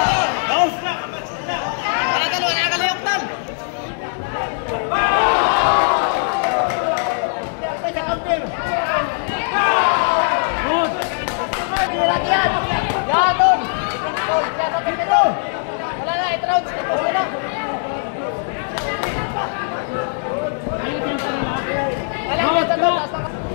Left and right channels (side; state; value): right; silent; digital silence